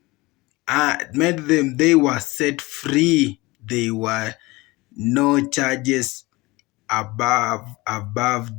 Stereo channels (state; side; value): quieter; right; 21.9 dB